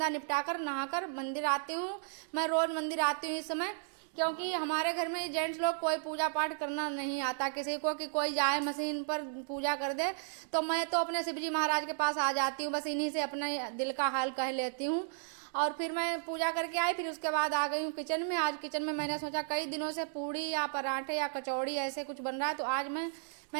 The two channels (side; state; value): left; silent; digital silence